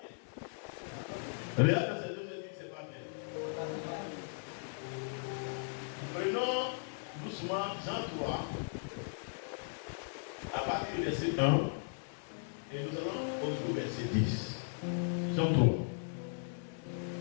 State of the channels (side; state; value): right; silent; digital silence